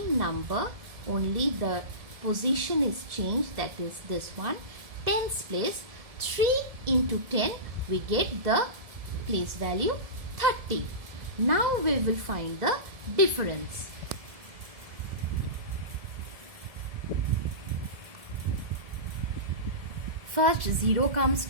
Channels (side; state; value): left; late; 1.7 ms